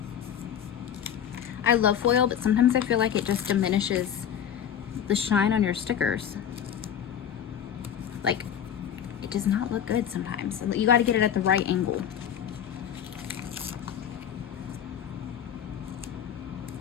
I love foil, but sometimes I feel like it just diminishes the shine on your stickers. Like, it does not look good sometimes. You got to get it at the right angle.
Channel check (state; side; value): quieter; right; 9.2 dB